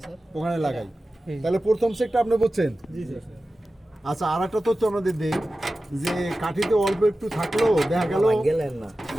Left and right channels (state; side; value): normal; both; correlation 0.94